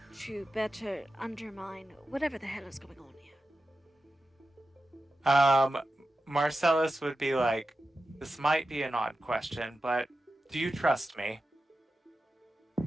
to better undermine whatever the hell is going on here. Marcellus would be like, this might be an odd question, but do you trust me?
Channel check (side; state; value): both; normal; correlation 0.92